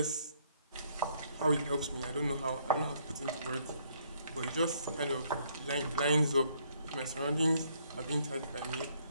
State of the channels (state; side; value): inverted; both; correlation -0.68